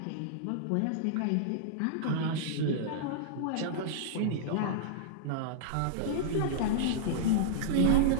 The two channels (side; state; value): both; different; correlation -0.03